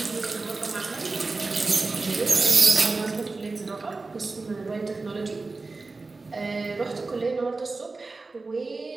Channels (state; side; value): quieter; left; 3.7 dB